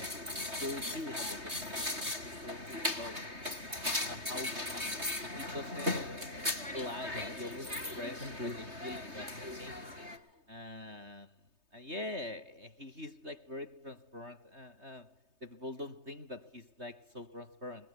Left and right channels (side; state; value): left; late; 3.2 ms